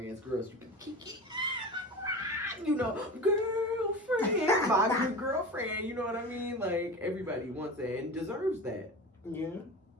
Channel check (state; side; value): normal; both; correlation 0.30